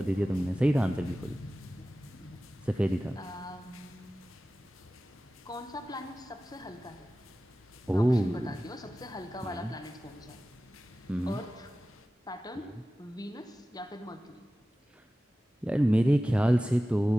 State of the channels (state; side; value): normal; both; correlation 0.95